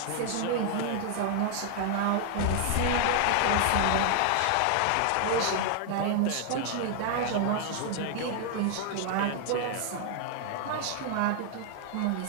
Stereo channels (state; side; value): different; both; correlation 0.00